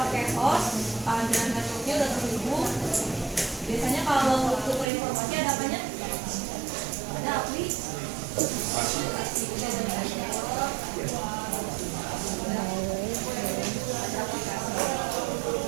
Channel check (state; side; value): drops out; left; at 4.9 s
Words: host, ada networknya udah terhubung. Biasanya kalau tukar informasi ada apanya? Ada aplikasi.